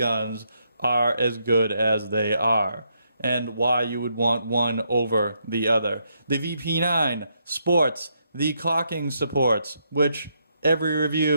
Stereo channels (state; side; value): inverted; both; correlation -0.77